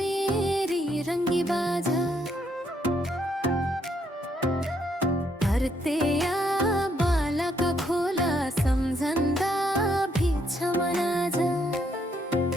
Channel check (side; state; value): both; normal; correlation 0.73